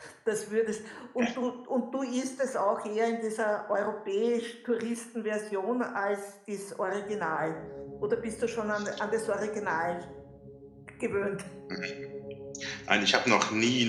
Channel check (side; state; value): both; identical; correlation 1.00